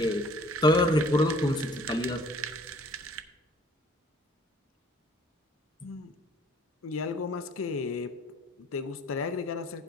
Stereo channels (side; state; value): both; normal; correlation 0.55